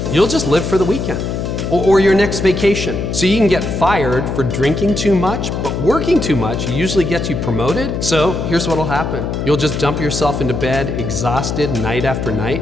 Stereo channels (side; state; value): left; noise; hum, 3 dB below the sound